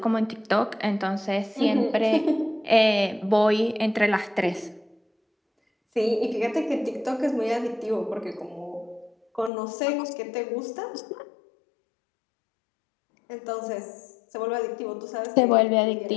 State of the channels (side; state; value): right; drops out; at 9.5 s